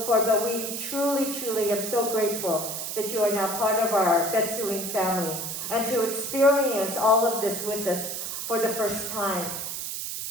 forward, but we truly, truly am so grateful that you are now part of our Betsuin family and to experience all of this with us for the first time.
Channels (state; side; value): noise; right; hiss, 5 dB below the sound